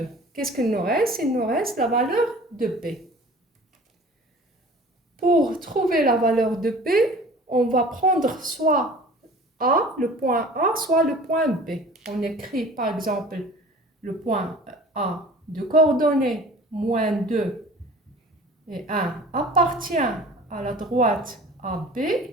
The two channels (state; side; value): normal; both; correlation 0.44